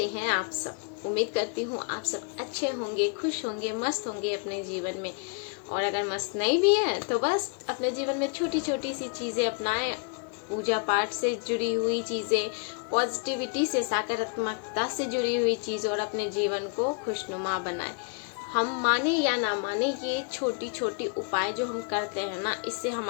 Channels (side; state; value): right; quieter; 39.6 dB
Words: हैं आप सब? उम्मीद करती हूँ आप सब अच्छे होंगे, खुश होंगे, मस्त होंगे अपने जीवन में। और अगर मस्त नहीं भी हैं तो बस अपने जीवन में छोटी छोटी सी चीज़ें अपनाएं, पूजा पाठ से जुड़ी हुई चीज़ें, पॉजिटिविटी से, सकारात्मकता से जुड़ी हुई चीज़ें और अपने जीवन को खुशनुमा बनाएं। हम माने या ना माने, ये छोटी छोटी उपाय जो हम करते हैं ना, इससे